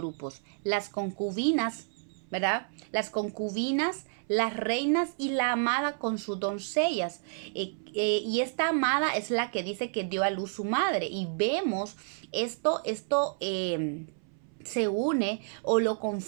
Las concubinas, ¿verdad? Las concubinas, las reinas y la amada con sus doncellas. Y esta amada es la que dice que dio a luz su madre. Y vemos esto se une o lo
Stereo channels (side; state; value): left; silent; 58 dB below the other